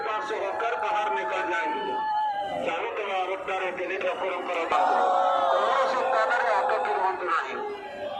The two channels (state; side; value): identical; both; correlation 1.00